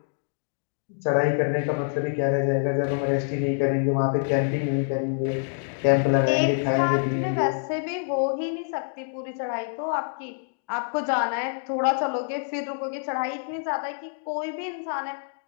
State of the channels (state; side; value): silent; right; digital silence